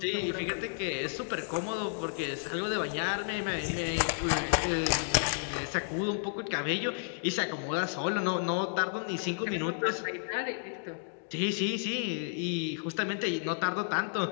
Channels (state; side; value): silent; right; digital silence